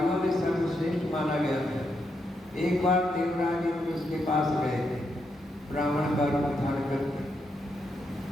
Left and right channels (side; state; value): both; normal; correlation 0.81